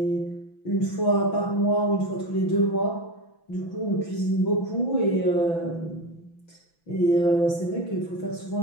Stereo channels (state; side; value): late; right; 6.0 ms